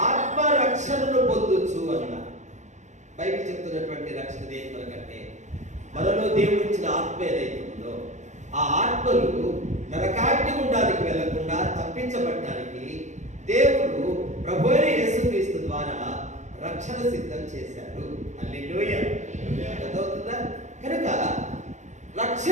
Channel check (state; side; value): late; left; 0.34 ms